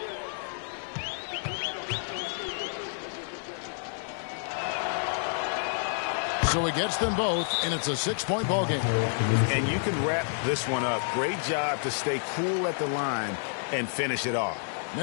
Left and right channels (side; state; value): right; silent; 58 dB below the other